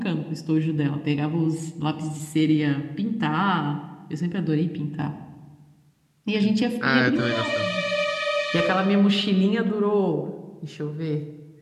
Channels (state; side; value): identical; both; correlation 1.00